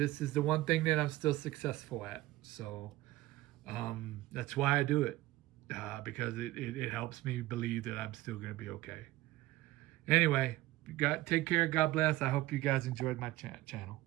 is the one thing that I'm still successful at. So that's why I do it, because it helps me believe that I'm still going to be okay. Anyway, take care. God bless. I hope you guys enjoyed my channel.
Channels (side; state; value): left; quieter; 17.4 dB